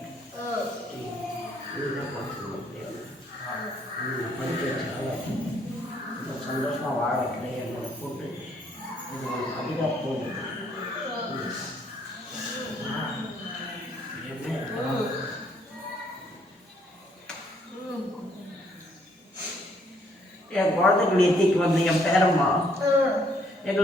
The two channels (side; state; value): both; normal; correlation 0.68